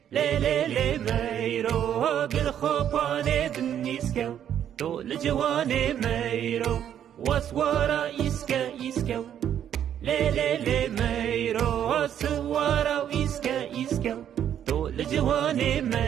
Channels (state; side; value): quieter; left; 9.8 dB